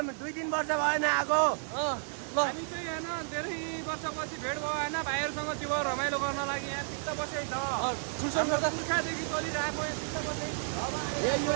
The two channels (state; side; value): silent; left; digital silence